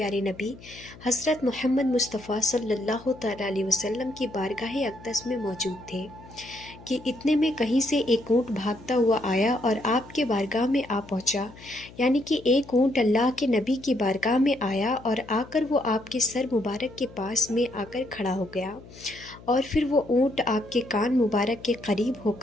نبی حضرت محمد مصطفیٰ صلی اللہ تعالیٰ علیہ وسلم کی بارگاہ اقدس میں موجود تھے کہ اتنے میں کہیں سے ایک اونٹ بھاگتا ہوا آیا اور آپ کے بارگاہ میں آ پہنچا۔ یعنی کہ ایک اونٹ اللہ کے نبی کی بارگاہ میں آیا اور آ کر وہ آپ کے سر مبارک کے پاس میں آ کر کھڑا ہو گیا، اور پھر وہ اونٹ آپ کے کان مبارک کے قریب ہو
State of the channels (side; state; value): left; noise; hum, 20 dB below the sound